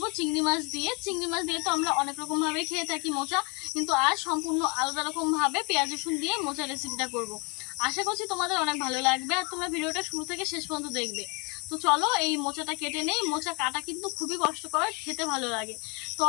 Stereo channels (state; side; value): quieter; right; 30.9 dB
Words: চিংড়ি মাছ দিয়ে। চিংড়ি মাছ দিয়ে তো আমরা অনেক রকম ভাবে খেয়ে থাকি মোচা, কিন্তু আজ সম্পূর্ণ আলাদা রকম ভাবে পেঁয়াজ রসুন দিয়ে মোচা রেসিপিটা করব। আশা করছি তোমাদের অনেক ভালো লাগবে আর তোমরা ভিডিওটা শুরু থেকে শেষ পর্যন্ত দেখবে। তো চলো এই মোচাটা কেটে নেই। মোচা কাটা কিন্তু খুবই কষ্টকর, খেতে ভালো লাগে। তো